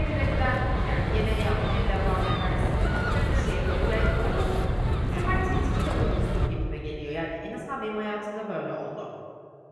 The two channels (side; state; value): both; identical; correlation 1.00